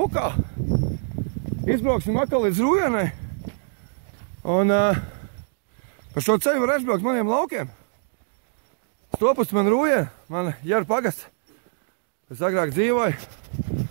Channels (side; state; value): left; silent; digital silence